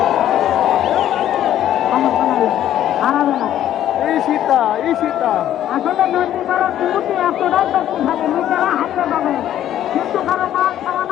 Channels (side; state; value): right; quieter; 11.7 dB